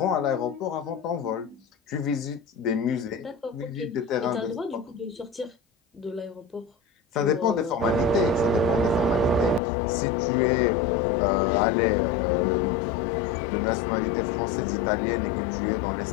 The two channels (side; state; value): right; drops out; at 9.6 s